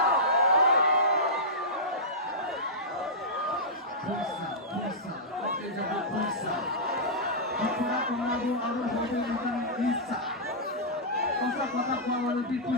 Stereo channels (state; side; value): normal; both; correlation -0.14